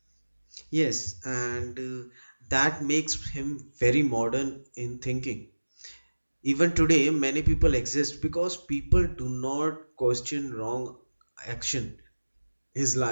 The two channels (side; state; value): both; inverted; correlation -1.00